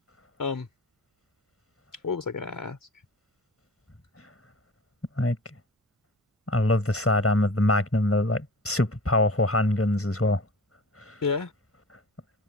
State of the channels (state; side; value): normal; both; correlation 0.39